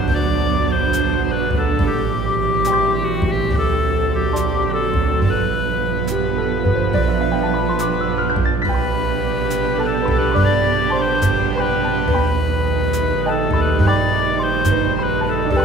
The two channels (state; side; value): noise; right; hum, 3 dB below the sound